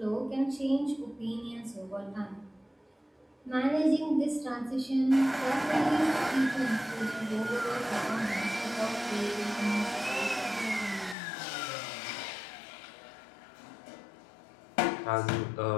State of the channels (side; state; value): right; drops out; at 11.2 s